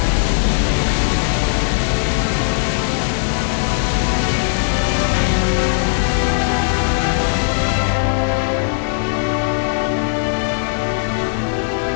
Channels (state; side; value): silent; right; digital silence